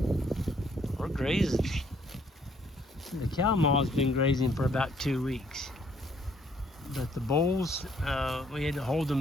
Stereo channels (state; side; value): normal; both; correlation 0.66